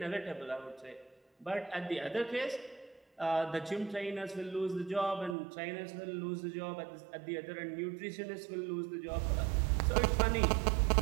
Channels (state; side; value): drops out; left; at 5.4 s